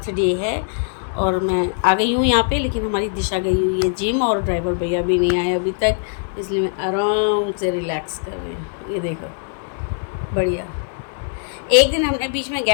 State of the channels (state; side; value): silent; right; 65 dB below the other